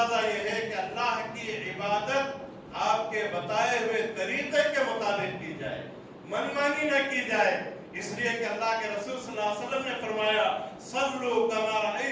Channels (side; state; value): both; identical; correlation 1.00